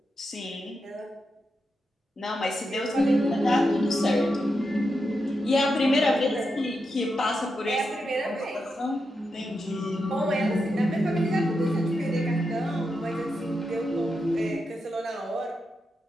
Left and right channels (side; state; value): both; normal; correlation 0.86